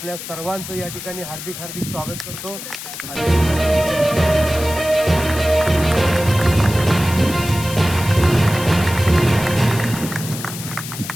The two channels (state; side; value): noise; left; hiss, 10 dB below the sound